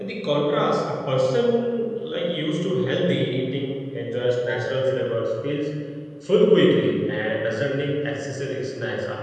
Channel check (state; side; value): identical; both; correlation 1.00